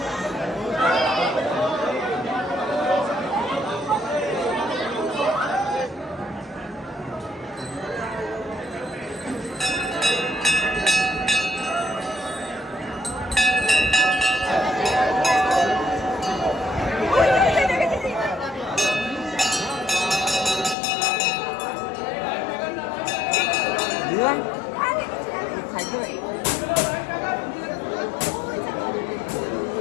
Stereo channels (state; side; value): drops out; right; at 20.8 s